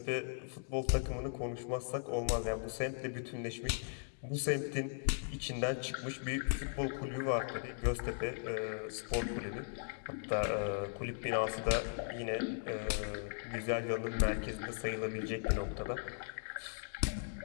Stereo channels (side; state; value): right; silent; digital silence